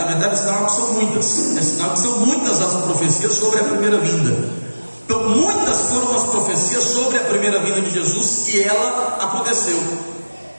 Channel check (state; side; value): inverted; both; correlation -1.00